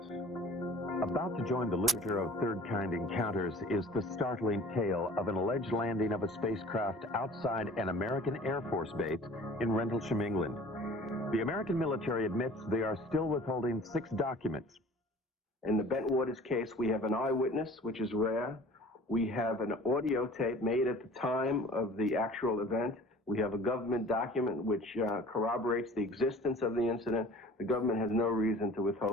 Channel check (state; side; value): normal; both; correlation 0.47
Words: About to join the literature of third-kind encounters is the startling tale of an alleged landing of a spacecraft outside an American Air Force base in Rendlesham, England. The American military admits they are still withholding 6 documents. In the Bentwaters case, we have an eyewitness, which is rare. We have an audio tape made at the time of the actual event. We have a government document which corroborates the existence of the incident. The government has no reason to